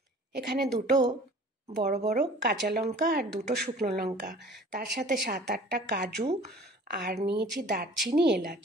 এখানে দুটো বড় বড় কাঁচা লঙ্কা আর দুটো শুকনো লঙ্কা, তার সাথে 7-8টা কাজু, আর নিয়েছি দারচিনি, এলাচ।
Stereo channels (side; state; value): both; normal; correlation 0.47